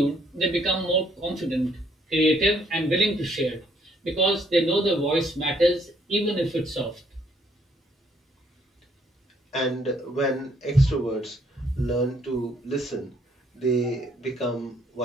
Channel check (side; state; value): both; normal; correlation 0.67